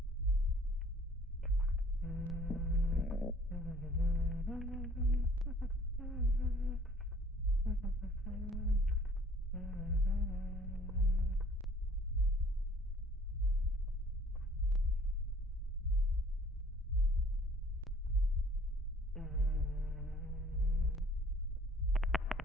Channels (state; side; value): normal; both; correlation 0.54